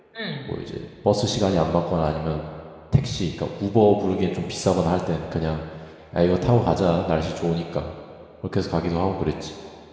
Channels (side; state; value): both; identical; correlation 1.00